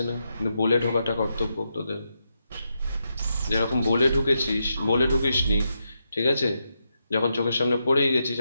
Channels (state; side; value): inverted; both; correlation -0.84